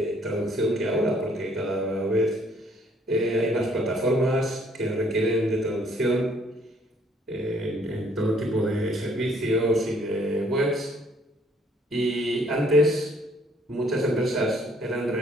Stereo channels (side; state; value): both; normal; correlation 0.64